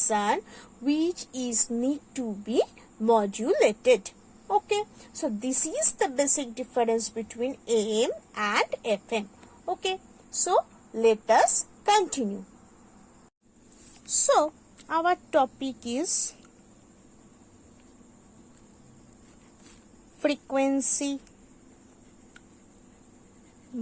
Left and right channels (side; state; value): both; identical; correlation 1.00